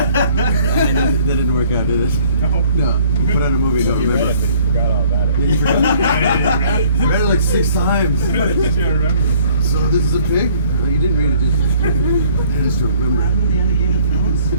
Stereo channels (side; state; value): both; inverted; correlation -0.57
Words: that didn't work out, did it? No. We put on a movie. Don't You read remember. it, but you forgot all about it. Yeah, you forgot. I read it like 6 times. I don't remember. So this is a pig? No, you didn't read it. You just remember. the end of Game of Thrones?